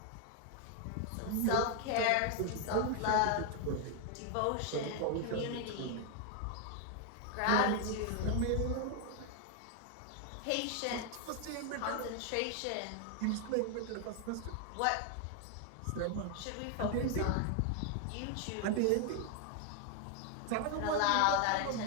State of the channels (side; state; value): both; different; correlation 0.00